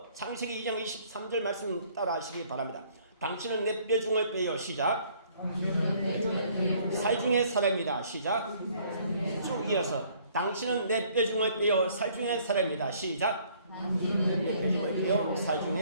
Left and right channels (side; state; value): both; inverted; correlation -0.60